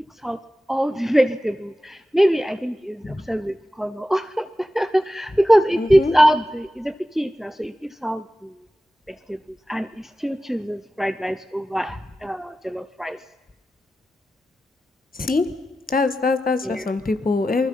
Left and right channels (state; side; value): normal; both; correlation 0.93